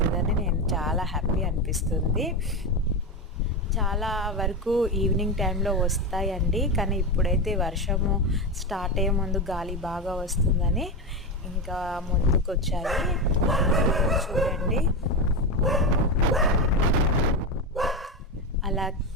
నేను చాలా హ్యాపీ అనిపిస్తుంది. చాలా వరకు ఈవినింగ్ టైంలో వస్తాయండి. కానీ ఇప్పుడైతే వర్షము స్టార్ట్ అయ్యే ముందు గాలి బాగా వస్తుందని ఇంకా ముందుకొచ్చాయి. చూడండి అలా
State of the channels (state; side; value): normal; both; correlation 0.16